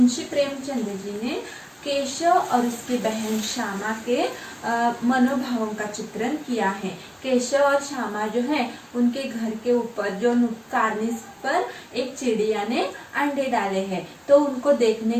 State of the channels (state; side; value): identical; both; correlation 1.00